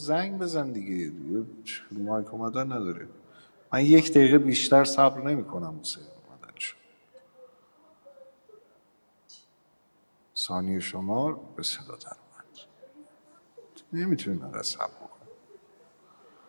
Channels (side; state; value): both; inverted; correlation -1.00